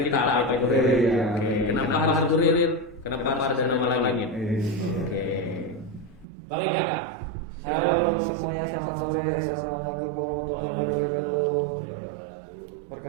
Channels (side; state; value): left; drops out; at 6.2 s